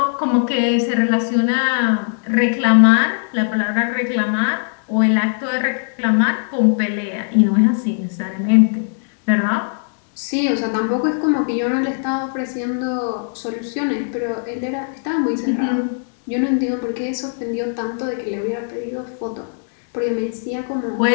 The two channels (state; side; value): silent; right; digital silence